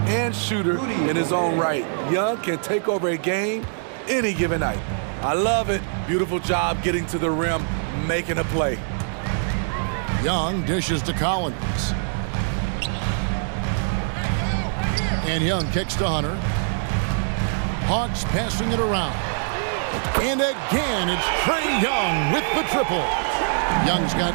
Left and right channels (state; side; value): silent; left; digital silence